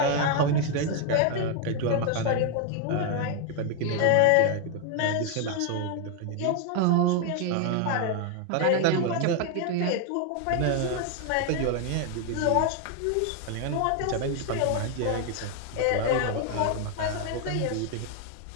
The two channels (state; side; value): different; both; correlation 0.00